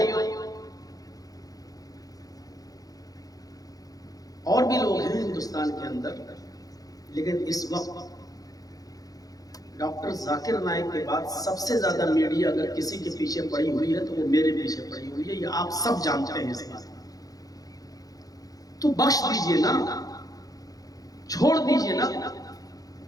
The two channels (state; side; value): late; right; 0.18 ms